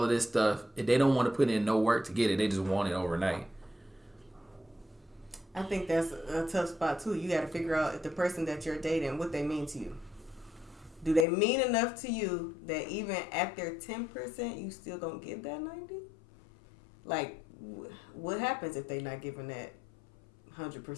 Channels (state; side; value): drops out; right; at 11.2 s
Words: of this stuff. And they don't want to put in no work to get it. They just want it overnight. I think that's a tough spot, too. You got to figure out if the person that you're dating, what they mean to you. Do they mean enough to you that even at their 10%, you still gonna give that 90? Like, what happens if they not giving that